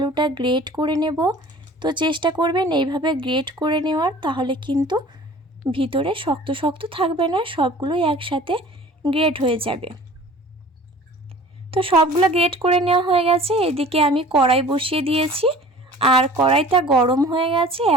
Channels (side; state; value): both; normal; correlation 0.45